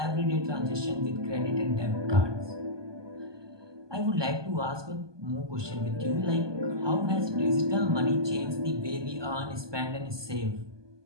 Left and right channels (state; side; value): late; left; 1.2 ms